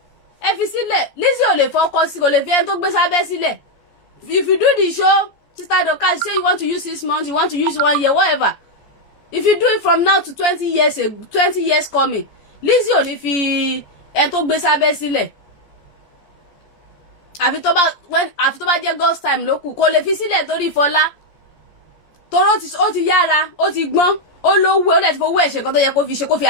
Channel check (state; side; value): late; right; 14 ms